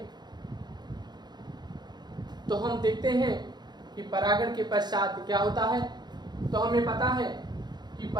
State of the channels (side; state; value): left; late; 0.20 ms